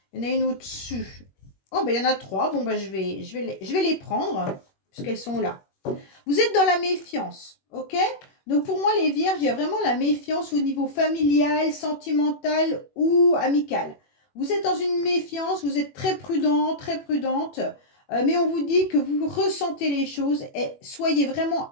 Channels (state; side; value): late; right; 21 ms